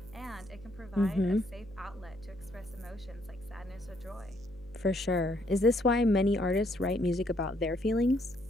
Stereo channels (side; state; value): left; noise; hum, 21 dB below the sound